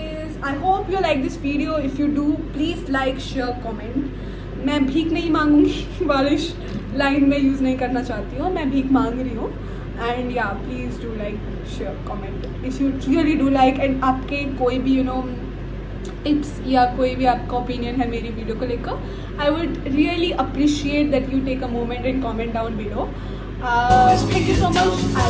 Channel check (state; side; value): identical; both; correlation 1.00